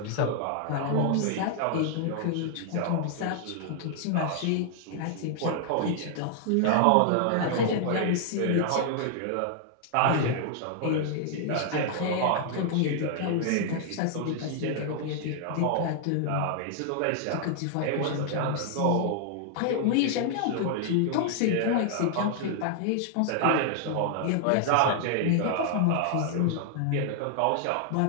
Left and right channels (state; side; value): different; both; correlation 0.00